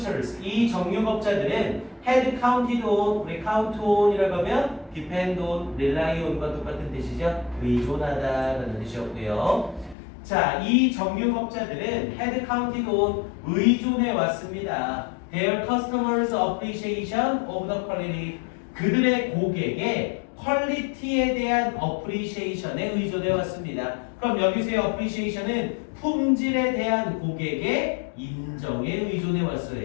이 정육업자들은 had counted on, 우리 count on이라고 하면 depend on, rely on과 똑같은 뜻이죠. 의존하다라는 뜻이었고요. 자, 이 정육업자들은 had counted on, 의존해 왔습니다. Their customers' appreciation of the quality, 그들의 고객의 퀄리티에 대한 appreciation에 의존해 왔습니다. 그럼 여기서의 appreciation은 품질에 대한 고객의 인정에 의존해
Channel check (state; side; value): drops out; right; at 10.0 s